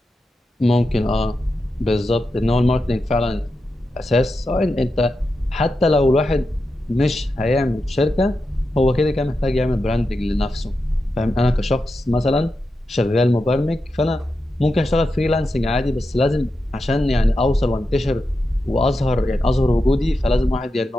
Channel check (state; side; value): normal; both; correlation 0.89